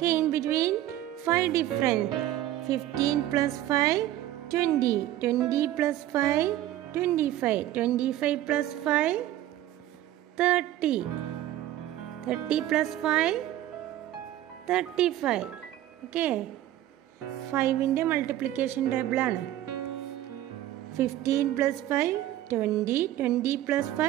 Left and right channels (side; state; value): left; quieter; 13.5 dB